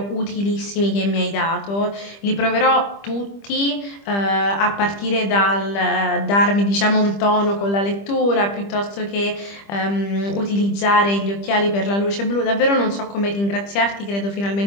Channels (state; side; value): late; right; 25 ms